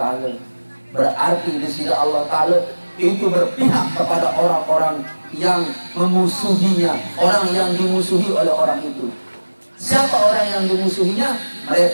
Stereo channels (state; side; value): inverted; both; correlation -1.00